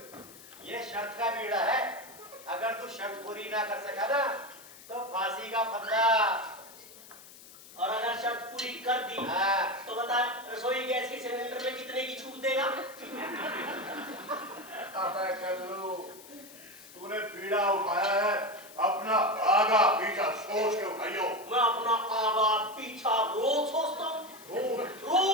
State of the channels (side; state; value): left; noise; hiss, 19 dB below the sound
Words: ये शर्त का बीड़ा है। अगर तू शर्त पूरी ना कर सका ना तो फांसी का फंदा। और अगर शर्त पूरी कर दी हाँ। तो बता रसोई गैस के सिलेंडर में कितने की छूट देगा? अबे कल्लू, तूने बीड़ा उठाया है, अपना आगा पीछा सोच के उठाइयो। मैं अपना आगा पीछा रोज सोचता हूँ, रोज